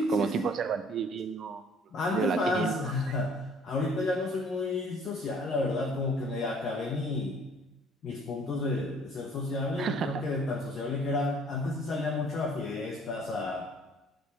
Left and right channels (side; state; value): both; normal; correlation 0.56